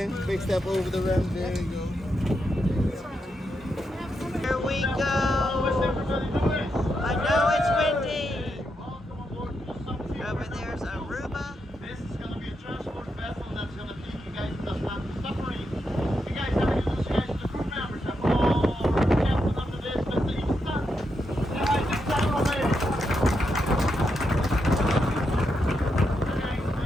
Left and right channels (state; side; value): normal; both; correlation 0.83